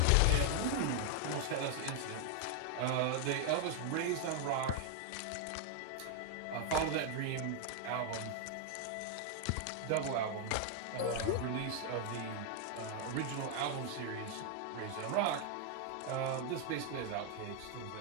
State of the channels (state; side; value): different; both; correlation 0.00